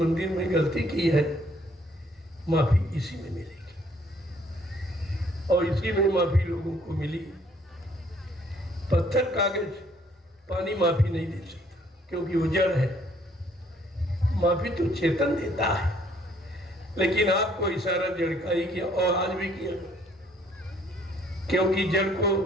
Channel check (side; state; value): both; normal; correlation 0.63